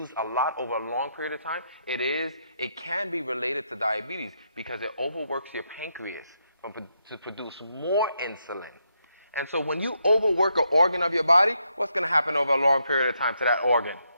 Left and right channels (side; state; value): both; inverted; correlation -0.79